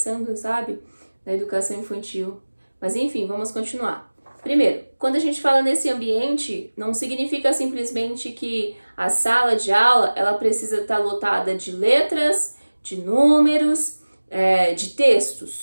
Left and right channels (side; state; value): both; inverted; correlation -1.00